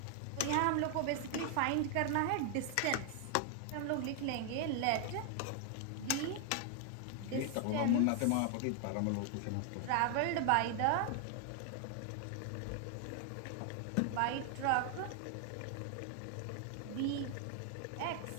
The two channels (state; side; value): different; both; correlation 0.00